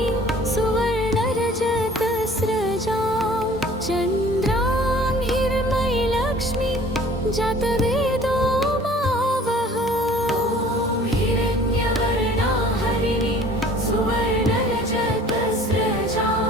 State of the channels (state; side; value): normal; both; correlation 0.50